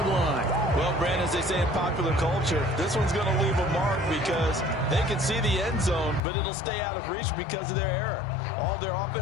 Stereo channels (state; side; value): drops out; right; at 6.2 s